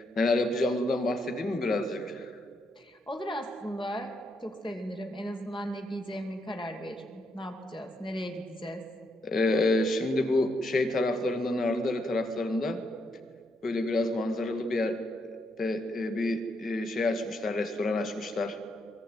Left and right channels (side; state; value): both; normal; correlation 0.78